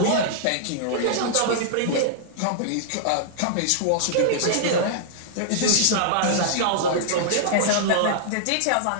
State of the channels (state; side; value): different; both; correlation -0.01